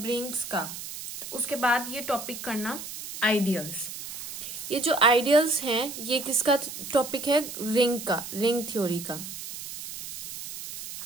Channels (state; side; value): noise; right; hiss, 9 dB below the sound